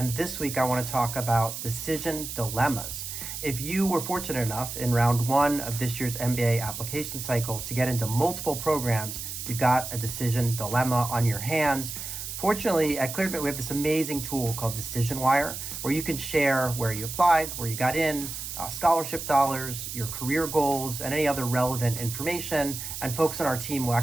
this week I want to talk about decision dilemmas. If you were fortunate enough in round one of this year's MBA application cycle to get into multiple programs, you've got a decision dilemma on your hands. Fortunately, at ClearAdmit, we have this amazing tool called Decision Wire, where you can share where you applied, where you got in, scholarship dollars, your career goals, and any other relevant information. And folks on our team will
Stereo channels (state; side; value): noise; right; hiss, 7 dB below the sound